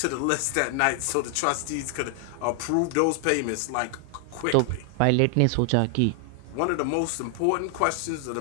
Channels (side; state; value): both; different; correlation 0.00